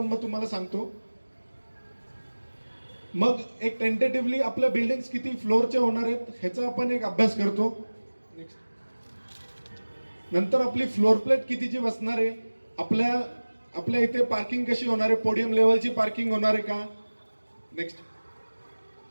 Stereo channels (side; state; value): both; inverted; correlation -1.00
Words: मग तुम्हाला सांगतो. मग एक टेंटेटिव्हली आपल्या बिल्डिंग्स किती फ्लोअरचे होणार आहेत ह्याचा आपण एक अभ्यास करतो. नंतर आपली फ्लोअर प्लेट कितीची बसणार आहे, आपल्या इथे पार्किंग कशी होणार आहे, पोडियम लेवलची पार्किंग होणार आहे का, नेक्स्ट